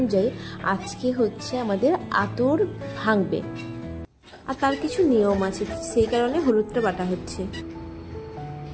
আজকে হচ্ছে আমাদের আতর ভাঙবে, আর তার কিছু নিয়ম আছে, সেই কারণে হলুদটা বাটা হচ্ছে।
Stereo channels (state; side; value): identical; both; correlation 1.00